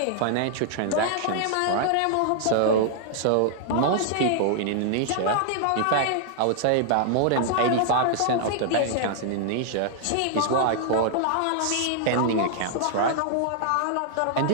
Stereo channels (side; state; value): both; different; correlation -0.01